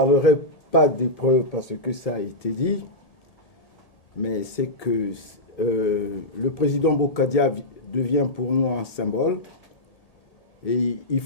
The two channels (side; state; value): right; late; 1.8 ms